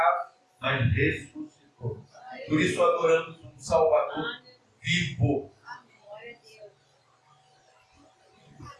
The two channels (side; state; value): both; identical; correlation 1.00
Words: mas ressuscitou. Por isso adoramos um Salvador vivo.